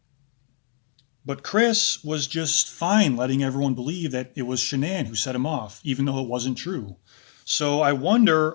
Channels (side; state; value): right; silent; digital silence